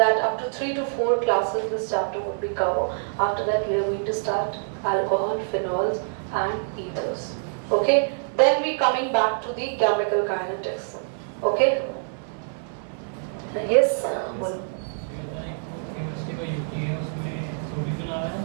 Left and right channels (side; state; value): left; silent; digital silence